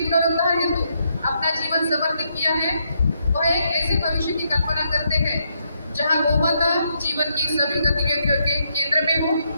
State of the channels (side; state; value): both; inverted; correlation -0.77